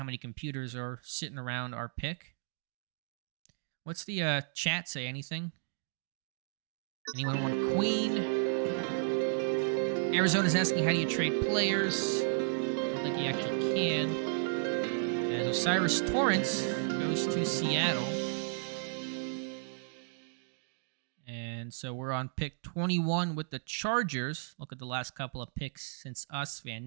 many computers are sitting around our pick. What's the chat say? Anything? Anyone want Queen? Arizona's asking, how do you trade players? I don't think you actually can. As Osiris Torrance goes to Seattle. And so we're on pick 21 with the Chargers. Look at the last couple of picks since us.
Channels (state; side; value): silent; left; digital silence